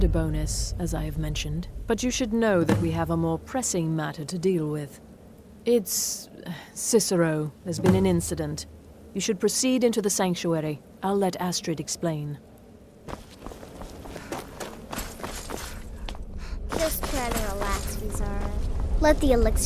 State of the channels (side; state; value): both; identical; correlation 1.00